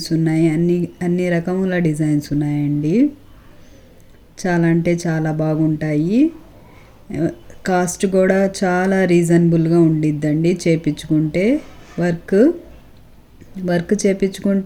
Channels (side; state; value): both; identical; correlation 1.00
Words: ఉన్నాయి, అన్ని రకముల డిజైన్స్ ఉన్నాయండి. చాలా అంటే చాలా బాగుంటాయి. కాస్ట్ కూడా చాలా రీజనబుల్గా ఉండిద్దండి. చేపించుకుంటే వర్క్